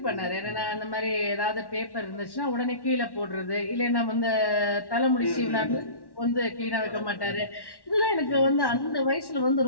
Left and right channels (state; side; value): late; right; 1.1 ms